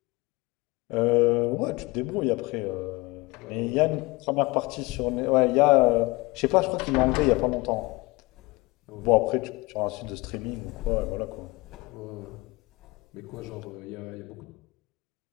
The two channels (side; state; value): right; quieter; 23.7 dB